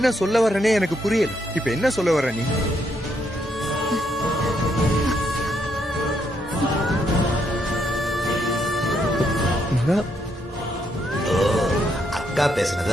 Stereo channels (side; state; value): both; normal; correlation 0.76